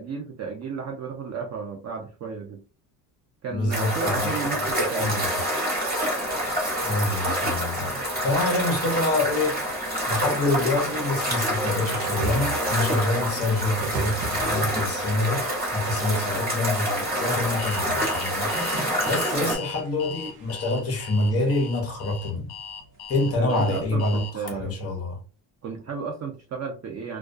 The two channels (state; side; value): normal; both; correlation 0.34